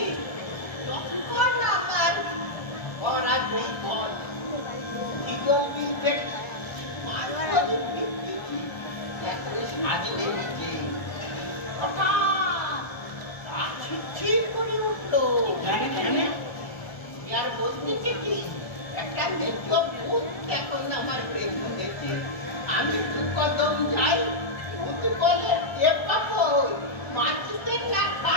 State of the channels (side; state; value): right; late; 1.3 ms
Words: তখন আমার পড়া দুই ঘর ইগল বিলবেট পাঁচ করে বিক্রি একরে সাজলে নিচে হঠাৎ গাছ ছিটছিট করে উঠলো। আর বলতেছে কি একটা মেজো ভূত এখন আমার পেছনেছে। আমি দু কদম যাই, ভূত বলে এ পাবো মাছতে না